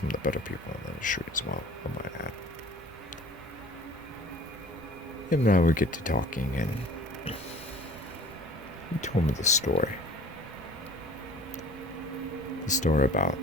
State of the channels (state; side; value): normal; both; correlation 0.47